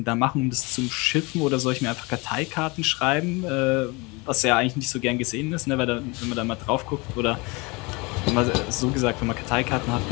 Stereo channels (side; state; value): right; quieter; 26.8 dB